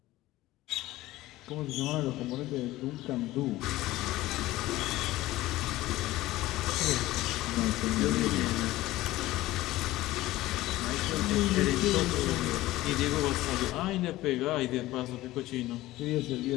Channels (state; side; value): quieter; right; 17.0 dB